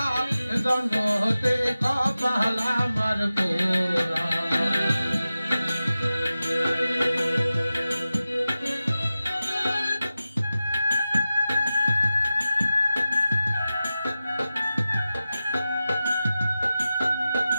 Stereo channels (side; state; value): both; inverted; correlation -0.94